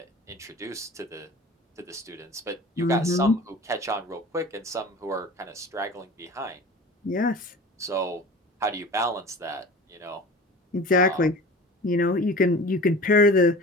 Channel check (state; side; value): normal; both; correlation 0.38